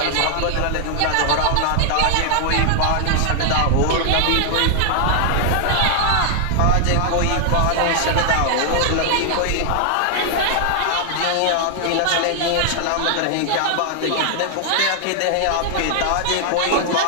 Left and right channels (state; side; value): different; both; correlation 0.00